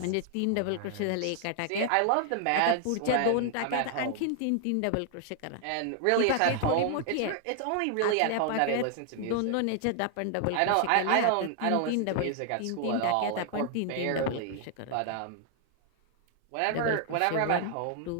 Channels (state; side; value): different; both; correlation 0.00